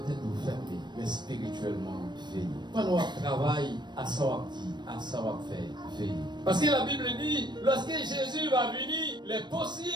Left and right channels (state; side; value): late; left; 0.21 ms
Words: tête vous fermez, mais spirituellement, veillez. Pendant qu'on travaille, à ça on dit, à ça on fait, veillez. Parce que la Bible dit, lorsque Jésus va venir, il est